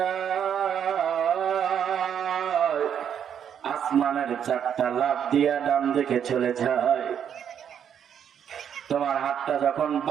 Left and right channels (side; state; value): left; quieter; 8.6 dB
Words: আসমানের চারটা লাফ দিয়া ডান দিকে চলে যায়। তোমার হাতটা যখন